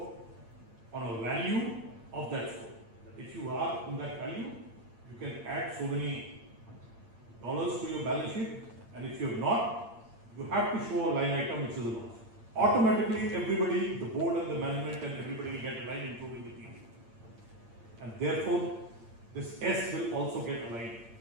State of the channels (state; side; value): late; left; 8.8 ms